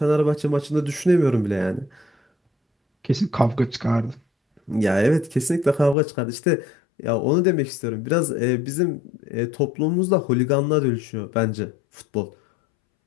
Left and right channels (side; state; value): right; drops out; at 6.0 s